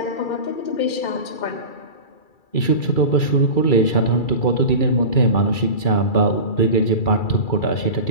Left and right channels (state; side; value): late; right; 2.3 ms